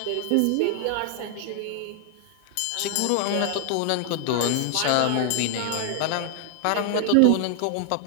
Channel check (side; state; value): both; different; correlation -0.01